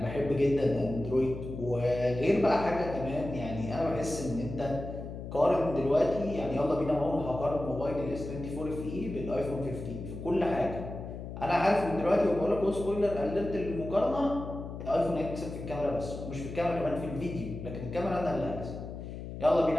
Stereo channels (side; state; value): left; noise; hum, 9 dB below the sound